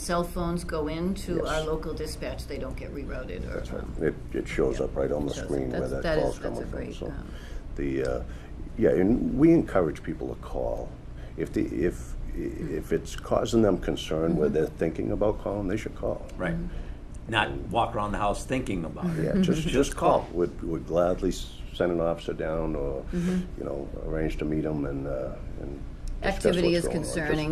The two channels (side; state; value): both; identical; correlation 1.00